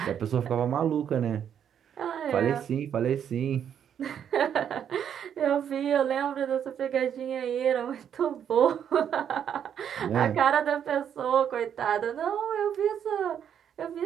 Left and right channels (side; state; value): left; quieter; 8.8 dB